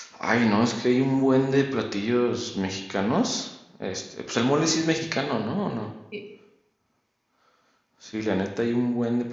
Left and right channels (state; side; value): identical; both; correlation 1.00